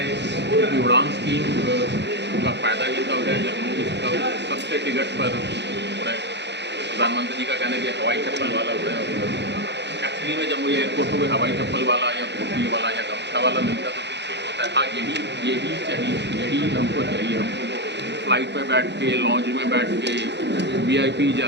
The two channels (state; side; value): late; left; 0.50 ms